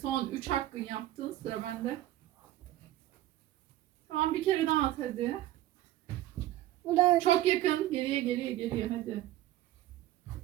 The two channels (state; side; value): quieter; left; 14.7 dB